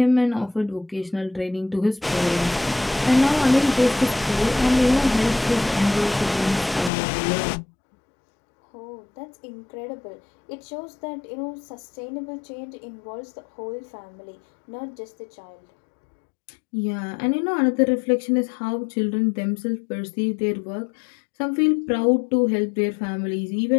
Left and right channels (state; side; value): drops out; right; at 6.9 s